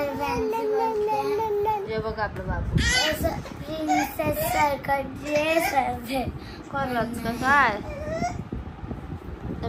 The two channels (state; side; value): identical; both; correlation 1.00